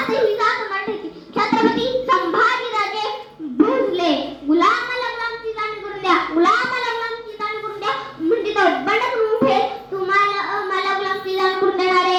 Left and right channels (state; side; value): identical; both; correlation 1.00